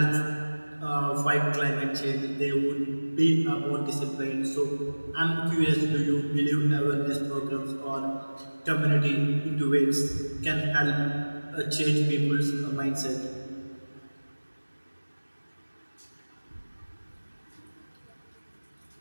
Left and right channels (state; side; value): inverted; both; correlation -1.00